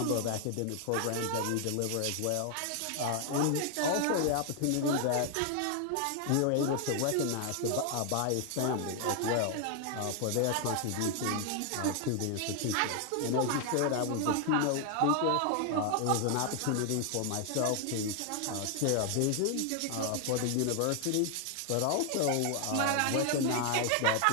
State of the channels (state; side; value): different; both; correlation 0.00